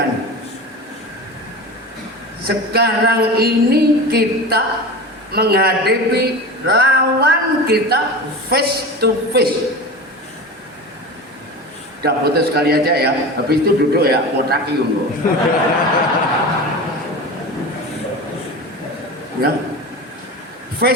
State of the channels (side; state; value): both; normal; correlation 0.30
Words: sekarang ini kita menghadapi lawan kita face to face. Udah foto sekali aja ya, habis itu duduk ya, potaki loh. Ya,